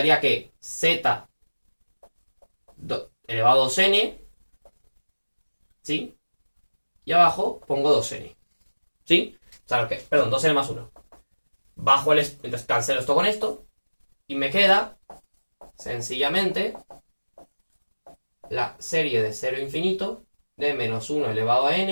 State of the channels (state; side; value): inverted; both; correlation -1.00